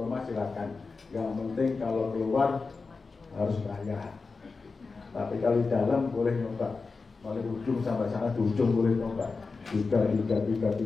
silakan. Yang penting kalau keluar harus bayar. Tapi kalau di dalam boleh nyoba. Mulai ujung sampai sana di ujung boleh nyoba. 3. Kalau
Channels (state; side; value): quieter; right; 4.3 dB